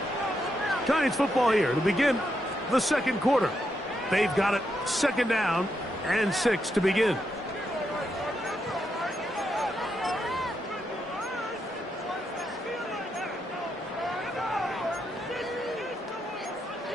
Giants football here to begin the 2nd quarter. They've got it 2nd down and 6 to begin.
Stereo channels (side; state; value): both; normal; correlation 0.82